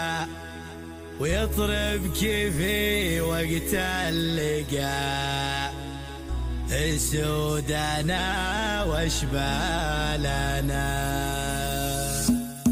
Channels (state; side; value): identical; both; correlation 1.00